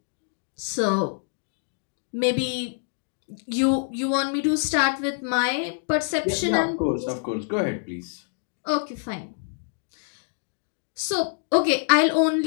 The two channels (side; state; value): right; silent; digital silence